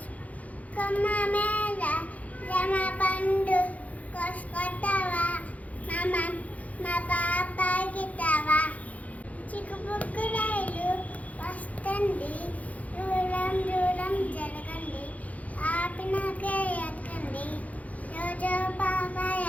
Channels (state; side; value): late; right; 0.071 ms